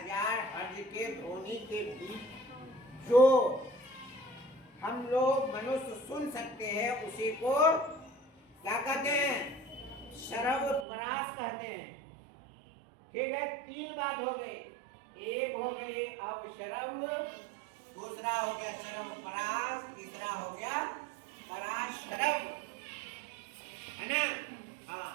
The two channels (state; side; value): drops out; left; at 10.9 s